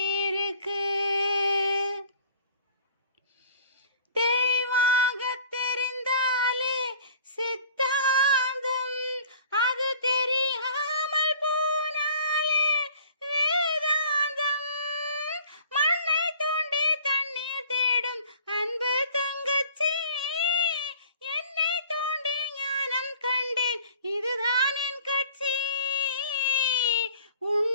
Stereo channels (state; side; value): inverted; both; correlation -0.49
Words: இருக்கு. தெளிவாக தெரிந்தாலே சித்தாந்தம், அது தெரியாமல் போனாலே வேதாந்தம். மண்ணை தோண்டி தண்ணீர் தேடும் அன்பு தங்கச்சி. என்னை தோண்டி ஞானம் கண்டேன், இதுதான் என் கட்சி.